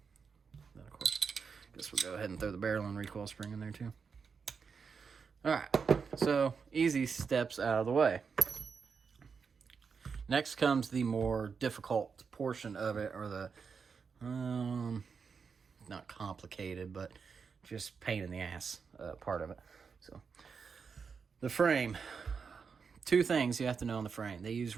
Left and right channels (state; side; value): quieter; left; 5.7 dB